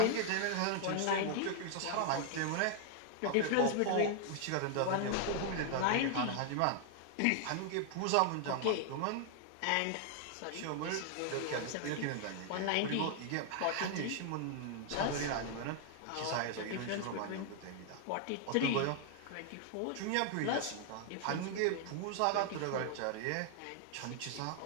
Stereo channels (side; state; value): both; different; correlation 0.00